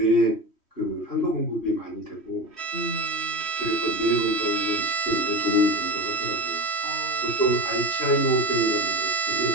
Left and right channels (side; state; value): right; late; 3.1 ms